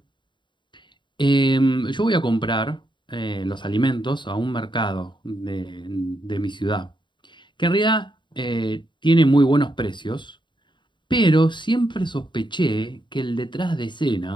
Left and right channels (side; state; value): right; late; 0.23 ms